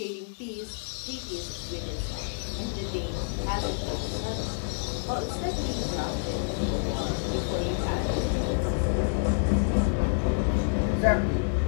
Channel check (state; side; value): silent; right; digital silence